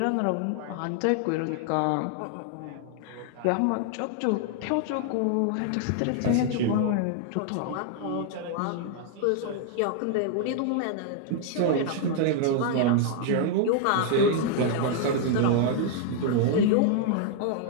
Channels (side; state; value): both; different; correlation 0.00